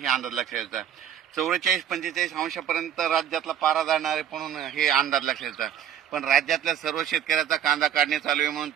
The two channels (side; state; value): left; quieter; 9.7 dB